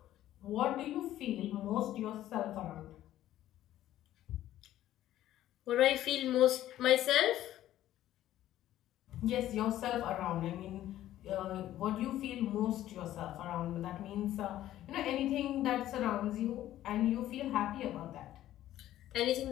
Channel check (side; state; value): right; quieter; 13.3 dB